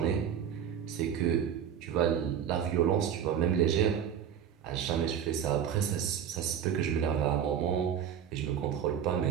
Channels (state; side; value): quieter; left; 8.7 dB